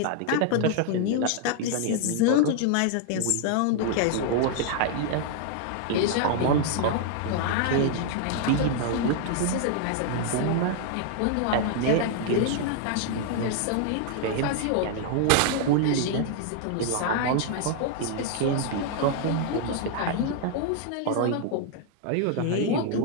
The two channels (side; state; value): both; different; correlation 0.00